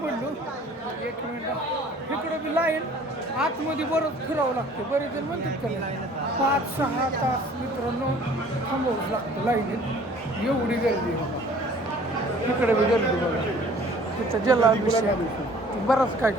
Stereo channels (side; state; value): both; normal; correlation 0.52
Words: एक मिनिट इकडं बी लाईन आतमध्ये बरंच फिरावं लागतं. बरेच जण म्हणतात का 5-6 तास मित्रांनो थांबावंच लागतं लाईनीत. एवढी गर्दी इकडे बी गर्दी बघा. तिथं जलाभिषेक बराच काय